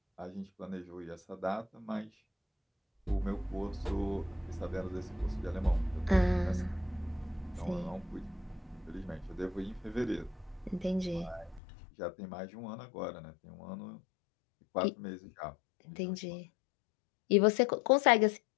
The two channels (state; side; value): drops out; right; at 11.6 s